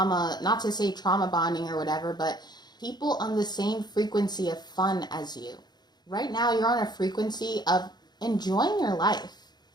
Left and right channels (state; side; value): late; right; 0.20 ms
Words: not to say trauma bonding or whatever, but people on the same frequency of fun as you. Right now, you're on a frequency of enjoying your life,